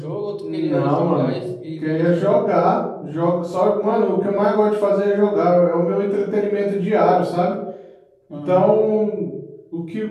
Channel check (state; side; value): identical; both; correlation 1.00